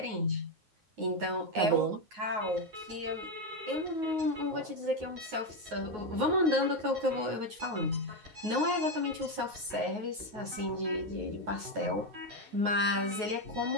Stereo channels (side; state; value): left; late; 9.4 ms